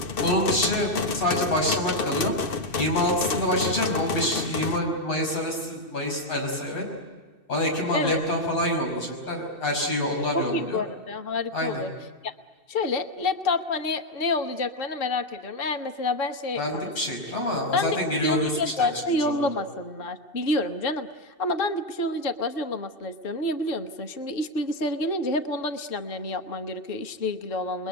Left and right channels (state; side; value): late; right; 2.7 ms